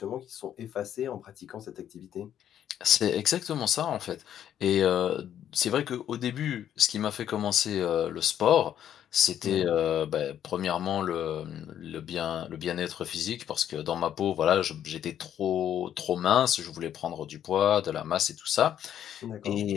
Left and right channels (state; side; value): quieter; right; 10.2 dB